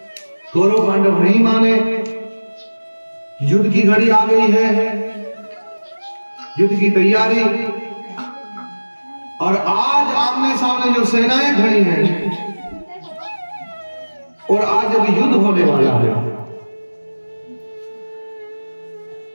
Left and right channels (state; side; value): inverted; both; correlation -1.00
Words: कौरव पांडव नहीं माने, युद्ध की घड़ी आ गई है, युद्ध की तैयारी, और आज आमने सामने जो सेनाएं खड़ी हैं, और आज अभी युद्ध होने वाला है।